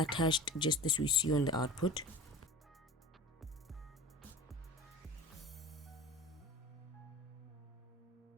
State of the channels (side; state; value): both; normal; correlation 0.37